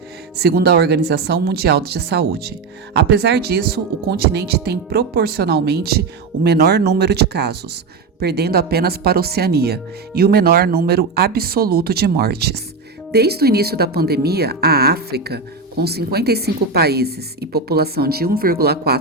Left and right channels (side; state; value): left; quieter; 4.4 dB